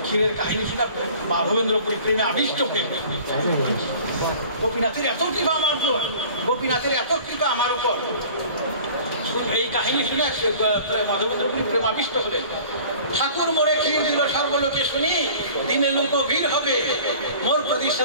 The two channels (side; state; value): both; inverted; correlation -0.46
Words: ক্ষীরের কাহিনী শুনে মাধবেন্দ্রপুরী প্রেমে আবিষ্ট হয়ে, গোপীনাথের এত কৃপা আমার উপর, গোপীনাথের এত কৃপা আমার উপর। এই কাহিনী শুনে মাধবেন্দ্রপুরী প্রেমাবিষ্ট হলেন। ঠাকুর মোরে ক্ষীর দিল সর্বলোকে শুনি, দিনে লোক ভিড় হবে মোর